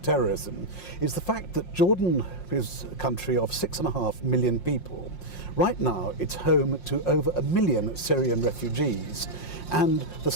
terrorism, is the fact that Jordan is a country of 6.5 million people. Right now, it's home to over 1 million Syrian refugees. And the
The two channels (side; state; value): right; late; 5.6 ms